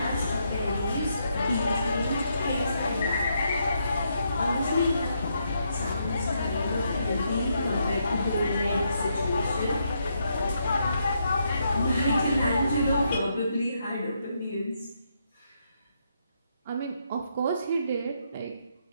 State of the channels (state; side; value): inverted; both; correlation -0.78